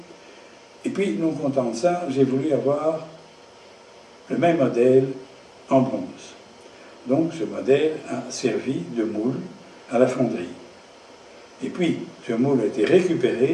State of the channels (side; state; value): both; identical; correlation 1.00